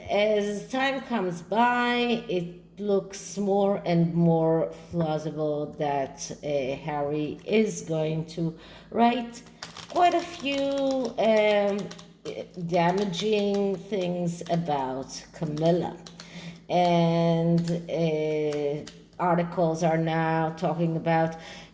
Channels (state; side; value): identical; both; correlation 1.00